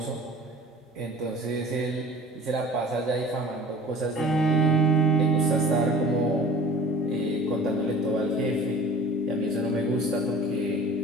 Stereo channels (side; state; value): both; normal; correlation 0.44